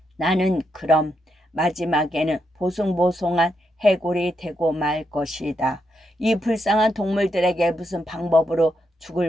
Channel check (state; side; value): normal; both; correlation 0.81